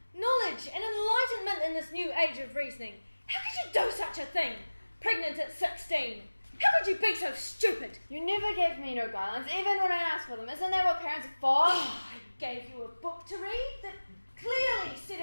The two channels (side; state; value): both; inverted; correlation -1.00